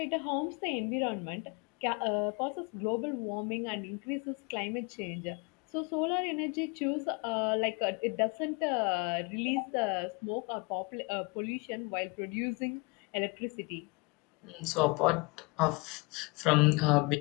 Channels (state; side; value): quieter; right; 28.4 dB